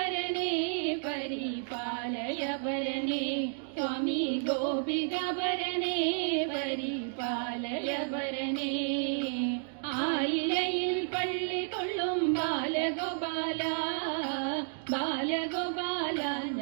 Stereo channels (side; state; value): left; silent; digital silence